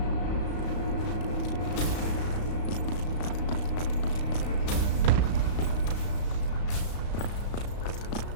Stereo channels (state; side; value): late; right; 35 ms